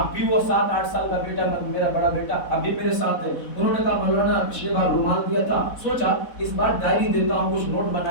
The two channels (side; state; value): right; late; 4.1 ms